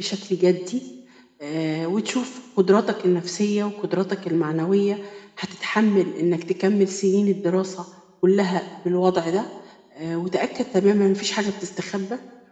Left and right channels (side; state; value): both; identical; correlation 1.00